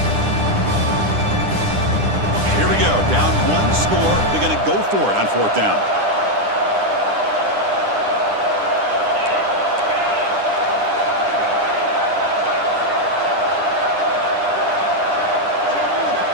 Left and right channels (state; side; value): late; left; 9.9 ms